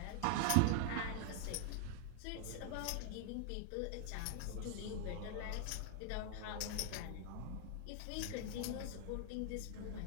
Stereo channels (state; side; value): different; both; correlation 0.00